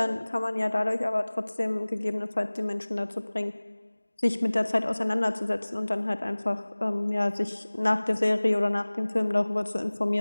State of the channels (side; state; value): both; inverted; correlation -1.00